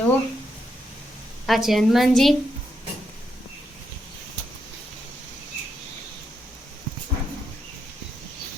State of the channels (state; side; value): normal; both; correlation 0.81